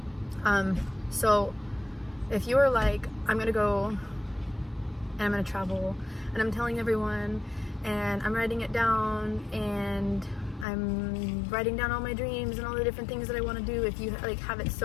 So if you're like, I'm gonna go and I'm gonna travel, and I'm telling everyone, and I'm writing it down, and I'm writing down all my dreams and all the different things that I want to do, if you like have it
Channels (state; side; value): drops out; right; at 10.7 s